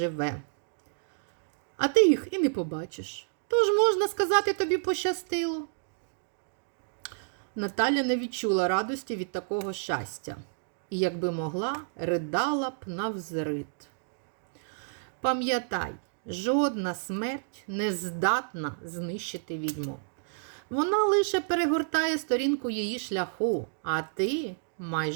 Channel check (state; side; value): silent; left; digital silence